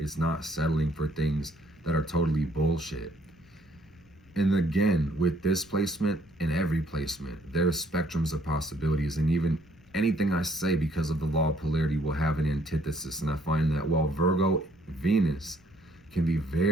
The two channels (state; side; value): noise; left; rumble, 29 dB below the sound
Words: not settling for things that are totally bullshit. And again, with this placement and every placement, there's spectrums of possibilities. And even anything I say, because of the law of polarity, will have an antithesis. And I find that while Virgo Venus can be